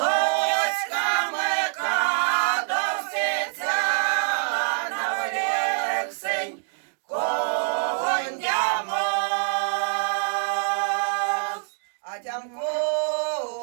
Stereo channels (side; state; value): left; silent; digital silence